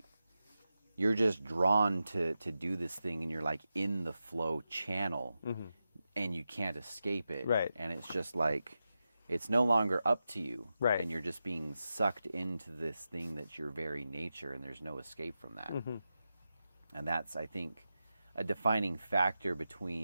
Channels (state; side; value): inverted; both; correlation -0.91